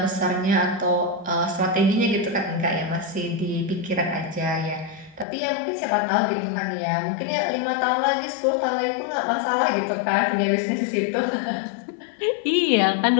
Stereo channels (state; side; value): drops out; right; at 5.2 s